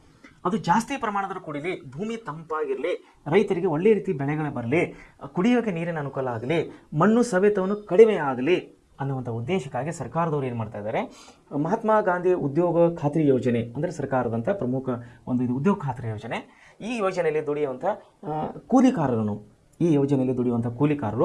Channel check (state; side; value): identical; both; correlation 1.00